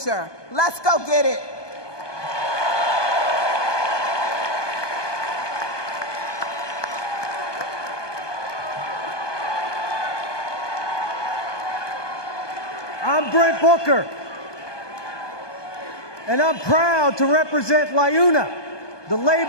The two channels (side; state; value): right; late; 1.2 ms